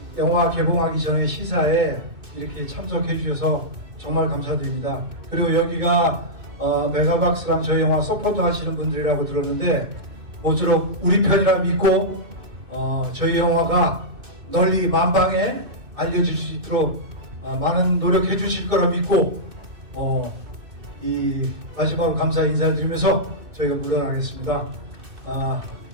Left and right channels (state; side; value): late; left; 2.6 ms